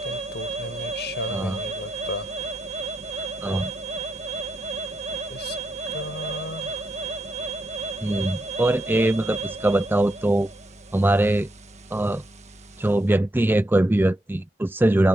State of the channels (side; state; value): both; normal; correlation 0.82